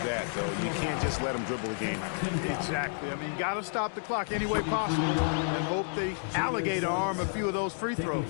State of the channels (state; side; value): silent; right; 58 dB below the other